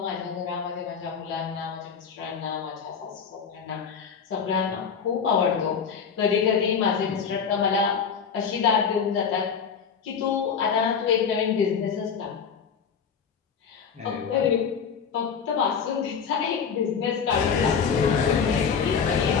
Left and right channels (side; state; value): right; quieter; 6.5 dB